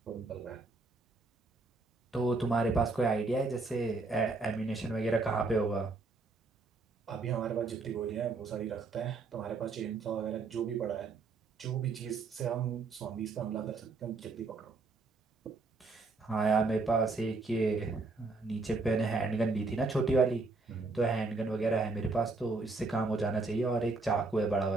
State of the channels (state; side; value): quieter; left; 3.8 dB